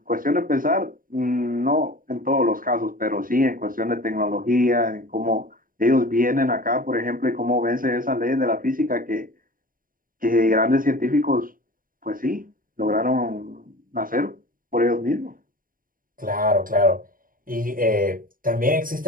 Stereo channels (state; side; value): late; left; 0.41 ms